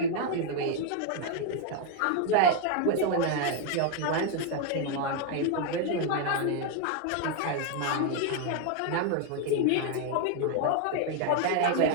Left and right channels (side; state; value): both; different; correlation 0.00